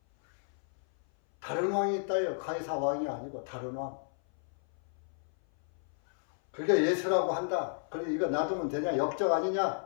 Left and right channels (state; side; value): silent; right; 56 dB below the other